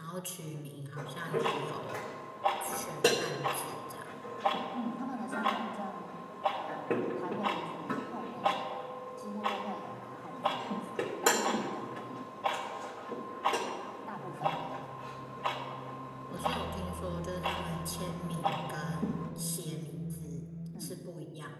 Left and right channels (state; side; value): identical; both; correlation 1.00